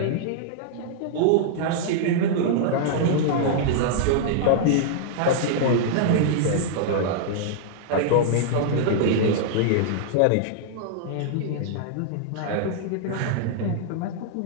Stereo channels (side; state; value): both; different; correlation -0.01